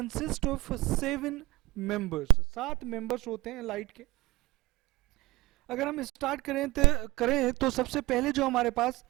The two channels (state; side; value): quieter; left; 20.4 dB